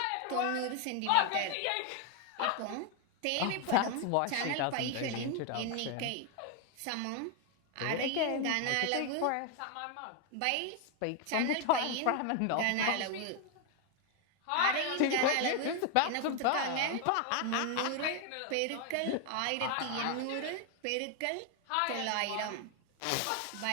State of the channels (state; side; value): different; both; correlation 0.01